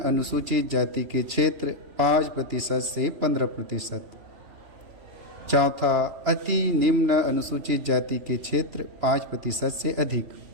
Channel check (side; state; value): left; late; 3.0 ms